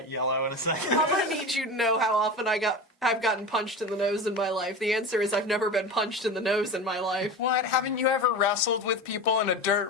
yellow in a second. I'm gonna need you to know how often I've gotten punched in the nose in my life. The answer is I've never been punched in the nose in my life. What? Haven't you ever wrestled with people in a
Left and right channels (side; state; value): both; normal; correlation 0.28